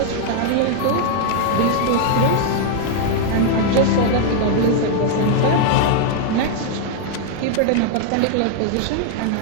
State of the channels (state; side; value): different; both; correlation 0.00